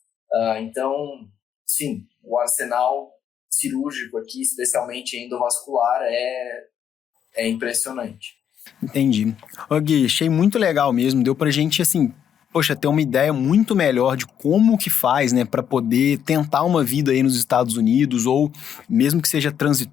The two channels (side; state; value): right; quieter; 8.8 dB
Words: Então, sim, o arsenal cirúrgico aqui, especialmente endovascular, é impressionante. Entendi. Ô Gui, achei muito legal mesmo, deu pra gente, assim, ter uma ideia muito melhor de como que faz, né, para poder tentar uma vida aí nos Estados Unidos, ou mesmo que seja